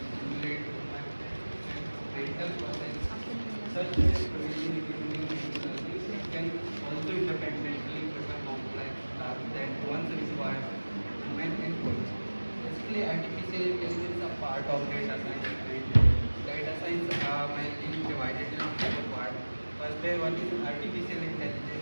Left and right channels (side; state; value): both; inverted; correlation -1.00